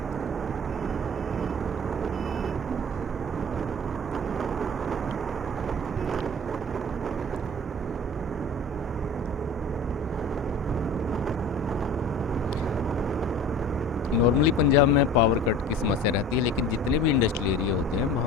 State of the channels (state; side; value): normal; both; correlation 0.40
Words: नॉर्मली पंजाब में पावर कट की समस्या रहती है, लेकिन जितने भी इंडस्ट्रियल एरिया होते हैं